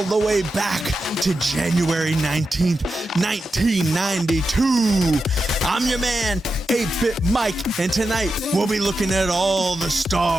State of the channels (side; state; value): both; normal; correlation 0.89